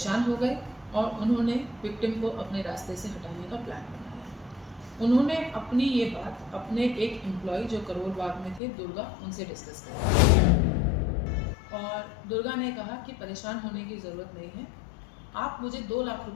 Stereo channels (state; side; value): drops out; right; at 8.6 s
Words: हो गए और उन्होंने विक्टिम को अपने रास्ते से हटाने का प्लान बनाया। उन्होंने अपनी ये बात अपने एक एम्प्लॉय जो करोल बाग में थे, दुर्गा, उनसे डिस्कस करी और दुर्गा ने कहा कि परेशान होने की ज़रूरत नहीं है, आप मुझे 2 लाख